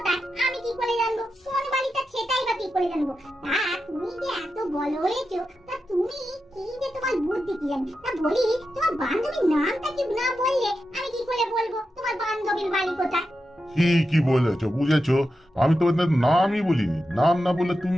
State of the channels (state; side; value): normal; both; correlation 0.89